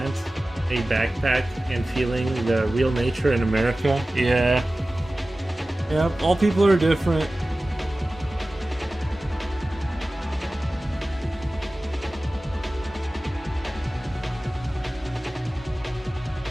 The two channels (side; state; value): both; normal; correlation 0.96